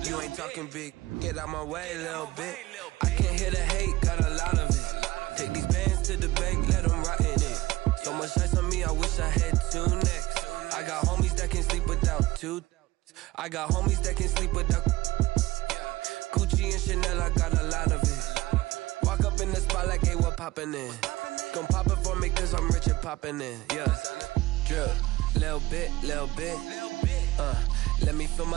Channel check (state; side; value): quieter; left; 18.4 dB